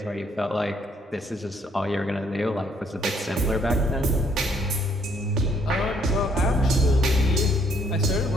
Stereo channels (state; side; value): normal; both; correlation 0.67